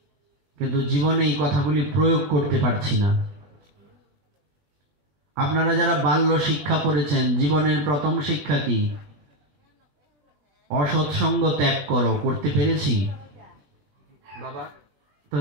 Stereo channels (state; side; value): late; left; 21 ms